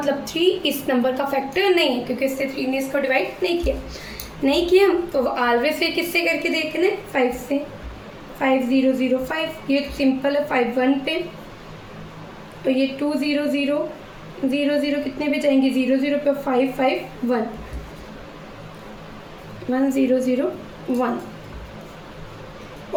3 इस नंबर का फैक्टर नहीं है क्योंकि इससे 3 ने इसको डिवाइड नहीं किया। तो ऑलवेज फिर किससे करके देखना है? 5 से। 5 0 0 5, ये सिंपल है। 5 1 पे, तो ये 2 0 0 0 0 कितने पे जाएंगे? 0 0 पे। 5 5 1 1 0 0 1।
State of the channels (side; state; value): both; identical; correlation 1.00